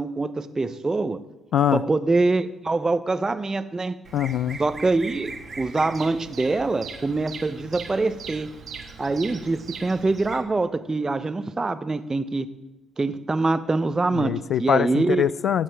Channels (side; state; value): both; normal; correlation 0.84